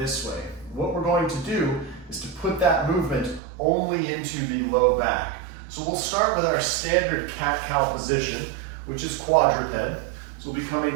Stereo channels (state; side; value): drops out; left; at 3.4 s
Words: way. What we're going to do is to put that movement only into the low back. So we'll start with our standard cat-cow position, which is quadruped. So we'll be coming